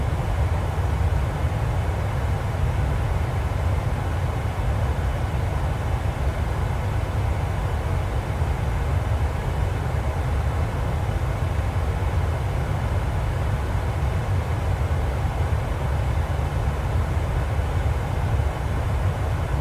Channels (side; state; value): both; identical; correlation 1.00